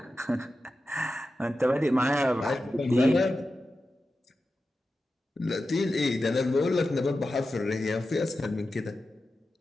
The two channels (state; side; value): normal; both; correlation 0.92